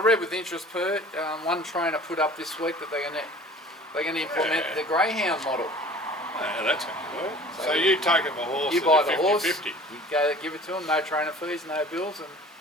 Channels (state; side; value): normal; both; correlation 0.45